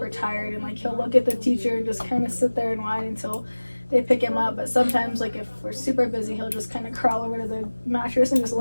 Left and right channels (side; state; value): both; inverted; correlation -1.00